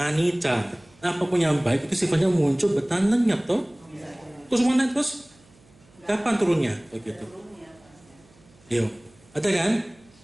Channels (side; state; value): right; noise; hum, 29 dB below the sound